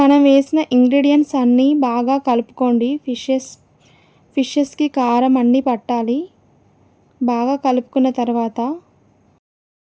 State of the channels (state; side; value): identical; both; correlation 1.00